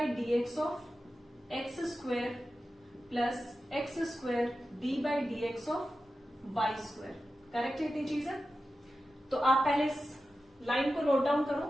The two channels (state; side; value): normal; both; correlation 0.93